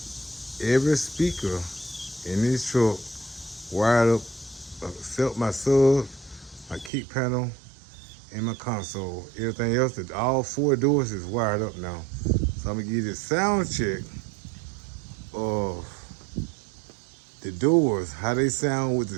every speaker in this truck wired up, except my sub, my kick panel, and my console. Everything else, all four doors is wired up now. So I'm gonna give you a sound check of the doors, how they sound with the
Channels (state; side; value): drops out; left; at 6.9 s